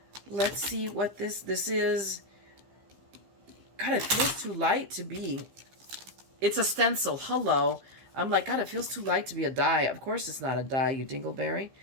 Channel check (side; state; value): left; late; 15 ms